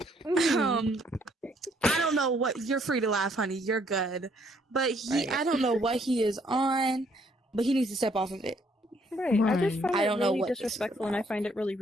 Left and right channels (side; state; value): both; normal; correlation 0.67